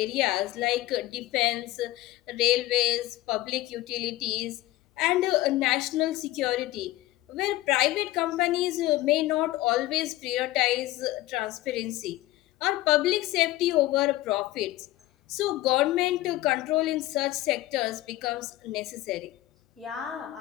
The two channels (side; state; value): right; quieter; 16.6 dB